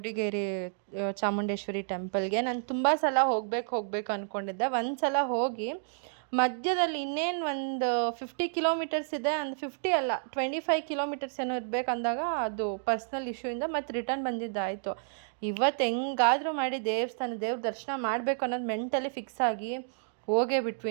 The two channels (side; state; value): left; silent; digital silence